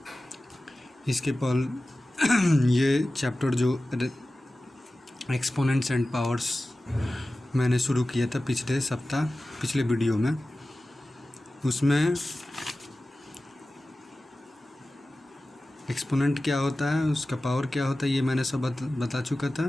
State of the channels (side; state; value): both; normal; correlation 0.96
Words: इसके पल ये चैप्टर जो एक्सपोनेंट्स एंड पावर्स मैंने शुरू किया था पिछले वीडियो में, उसमें एक्सपोनेंट क्या होता है, उसका पावर क्या होता है, ये मैंने सब बता चुका